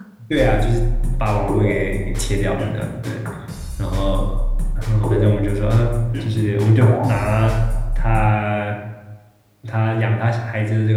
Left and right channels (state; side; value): identical; both; correlation 1.00